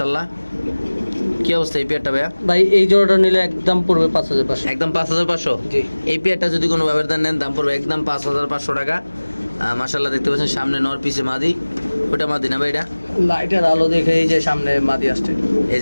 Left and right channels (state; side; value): inverted; both; correlation -1.00